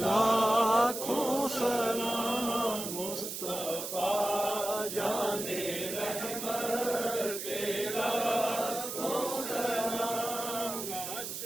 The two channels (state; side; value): noise; right; hiss, 6 dB below the sound